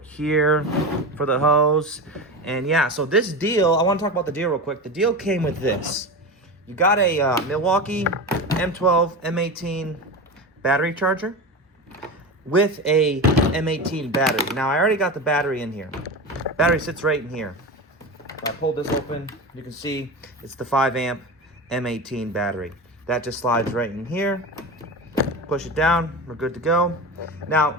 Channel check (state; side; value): normal; both; correlation 0.24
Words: here for the hose. And yeah, so this deal, I wanna talk about the deal real quick. The deal came with this. You got a Milwaukee M12, M18 battery charger with a M18 battery. Now, I already got the battery in here. Battery sits right in here. I pulled this open, you can see it's the 5-amp M18 battery. That just slides right in here. Push it down, we're good to go. Now,